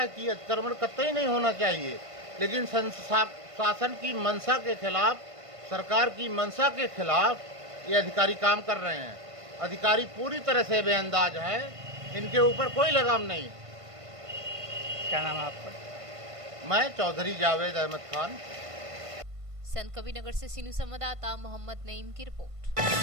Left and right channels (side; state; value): left; late; 1.5 ms